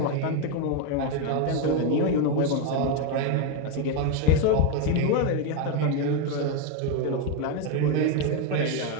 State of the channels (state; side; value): different; both; correlation 0.02